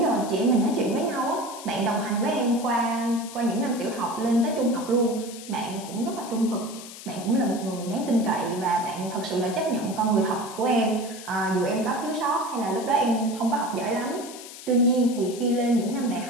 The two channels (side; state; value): left; noise; hiss, 14 dB below the sound